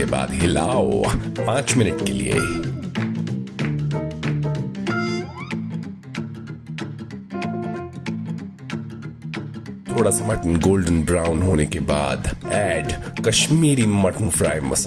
बाद हिलाओ 5 मिनट के लिए। थोड़ा सा मटन गोल्डन ब्राउन होने के बाद ऐड कश्मीरी मटन फ्राई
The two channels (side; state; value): both; identical; correlation 1.00